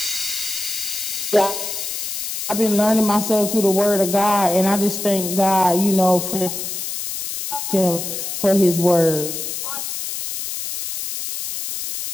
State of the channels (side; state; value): left; noise; hiss, 5 dB below the sound